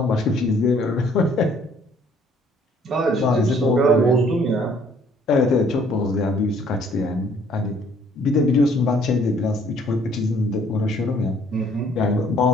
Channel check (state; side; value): normal; both; correlation 0.61